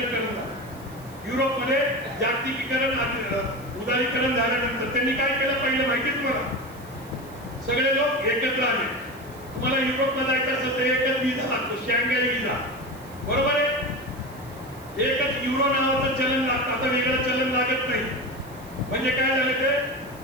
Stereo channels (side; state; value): right; noise; hiss, 23 dB below the sound